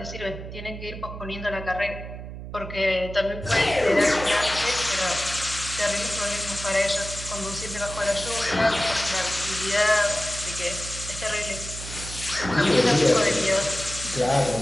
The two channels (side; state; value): right; noise; hum, 10 dB below the sound